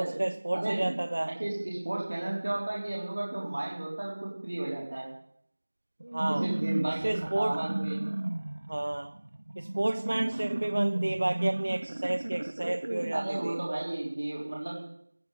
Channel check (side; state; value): both; inverted; correlation -1.00